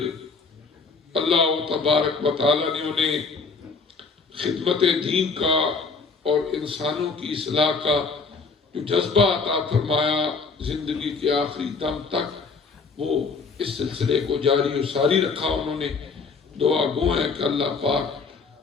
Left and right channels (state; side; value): quieter; right; 4.6 dB